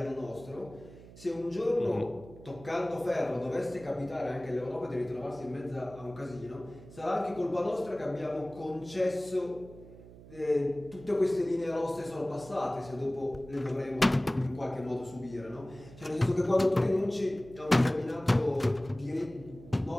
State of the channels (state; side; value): noise; right; hum, 18 dB below the sound